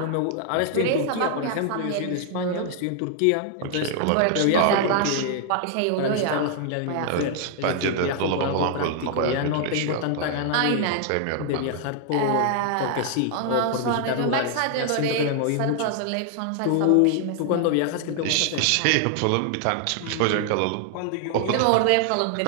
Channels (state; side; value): different; both; correlation 0.00